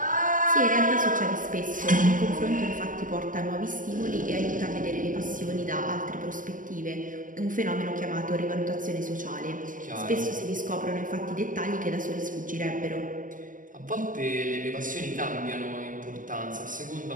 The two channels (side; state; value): left; late; 0.38 ms